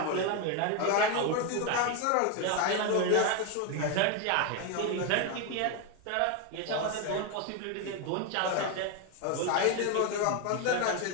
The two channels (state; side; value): different; both; correlation 0.02